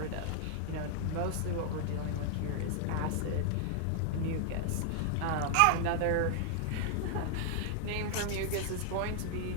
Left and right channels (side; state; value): both; different; correlation 0.00